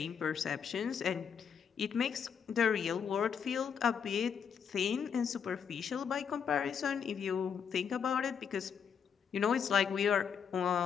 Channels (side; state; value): right; quieter; 7.2 dB